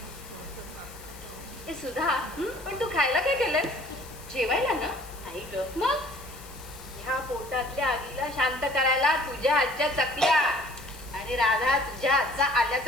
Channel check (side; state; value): left; noise; hiss, 18 dB below the sound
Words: हे सुधा, पण तू खायला काय केलंस? जेवायला ना? नाही ग. मग ह्या पोटातल्या आगीला शांत करायला तुझ्या हातच्या चकल्या आणि राधा तुझ्या हातचा